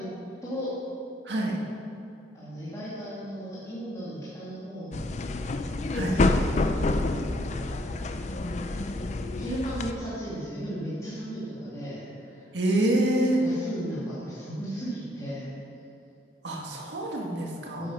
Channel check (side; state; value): both; normal; correlation 0.68